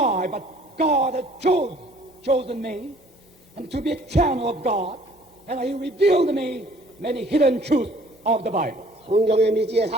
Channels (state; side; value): normal; both; correlation 0.56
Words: but God has chosen me and to be a channel of God, and He revealed to me many hidden truths of the Bible. 성경의 미지의